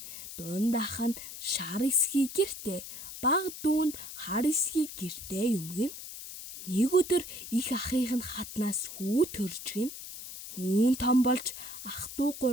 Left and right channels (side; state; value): left; noise; hiss, 11 dB below the sound